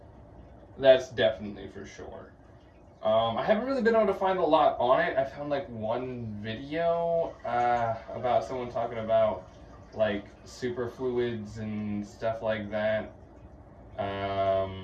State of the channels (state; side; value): identical; both; correlation 1.00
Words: That's definitely for sure. I haven't really been able to find a lot on it. I found like one video about someone talking about like superfluids and stuff like that.